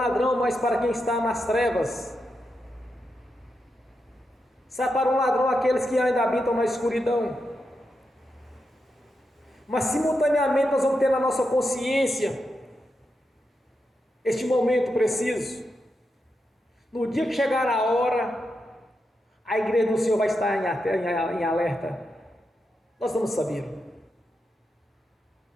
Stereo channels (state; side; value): normal; both; correlation 0.86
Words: mas para quem está nas trevas. Será para um ladrão aqueles que ainda habitam na escuridão. Mas simultaneamente nós vamos ter na nossa consciência este momento preciso. No dia que chegar a hora, a igreja do Senhor vai estar em alerta. Nós vamos saber.